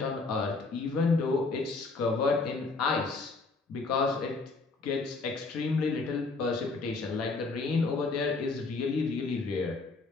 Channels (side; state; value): right; quieter; 3.9 dB